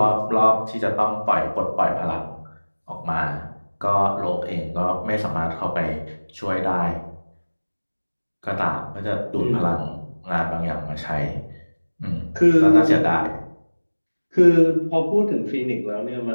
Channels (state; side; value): inverted; both; correlation -1.00